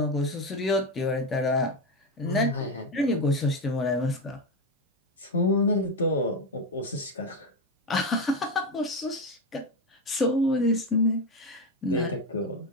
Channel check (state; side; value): normal; both; correlation 0.13